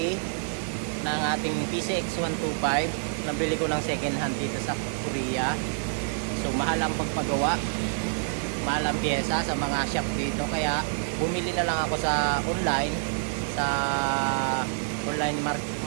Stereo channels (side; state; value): left; silent; 55 dB below the other